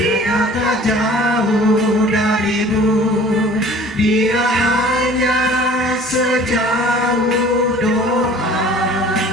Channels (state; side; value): normal; both; correlation 0.48